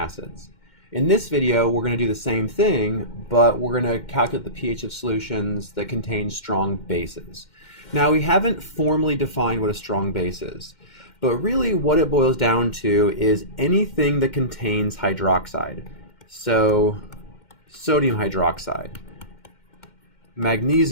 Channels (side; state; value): right; late; 2.1 ms